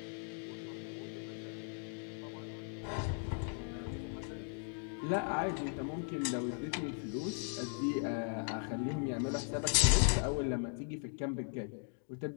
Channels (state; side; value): silent; right; 52 dB below the other